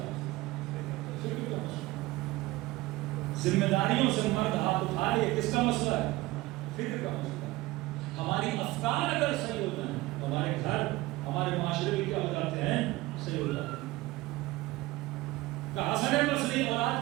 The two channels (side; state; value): left; quieter; 19.3 dB